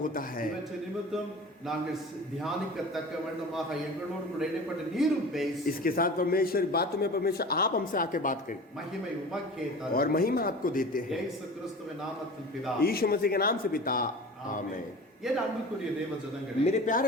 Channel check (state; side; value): normal; both; correlation 0.37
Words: होता है। இவற்றை நிமித்தம் நாங்கள் தியானிக்கத்தக்க வண்ணமாக எங்களோடு கூட இடைப்பட்ட நீரும் பேசி इसके साथ परमेश्वर बातों में परमेश्वर आप हमसे आके बात करें மகிமை உமக்கே தரும். और महिमा आपको देते हैं। இயேசு கிறிஸ்துவின் நாமத்தில் பிதா यीशु मसीह के नाम से पिता, आमीन। என் அன்புக்குரிய தேவ ஜனங்களே मेरे